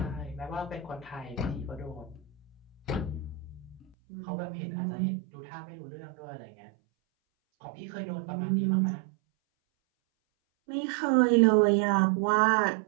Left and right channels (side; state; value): left; drops out; at 3.9 s